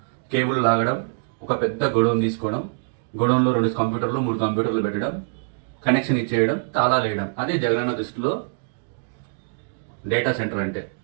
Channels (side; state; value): left; silent; digital silence